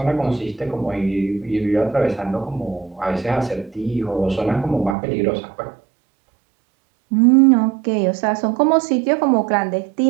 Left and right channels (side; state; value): left; drops out; at 5.0 s